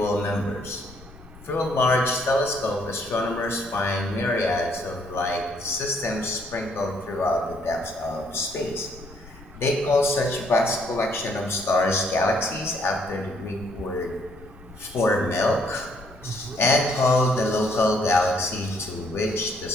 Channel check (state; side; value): noise; left; rumble, 20 dB below the sound